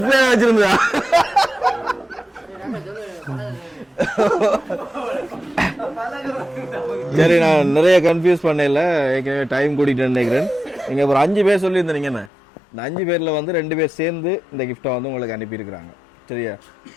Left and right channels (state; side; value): drops out; right; at 12.3 s